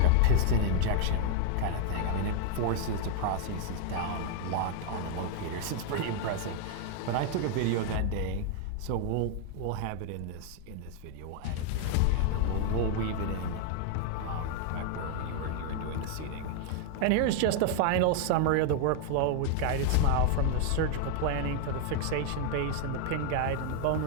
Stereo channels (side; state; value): both; different; correlation 0.00